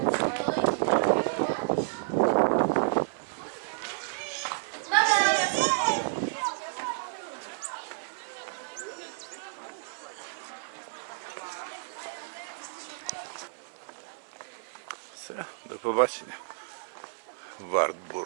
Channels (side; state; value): left; silent; 57 dB below the other